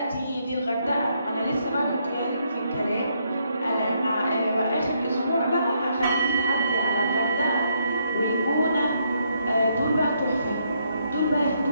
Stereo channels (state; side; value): inverted; both; correlation -0.74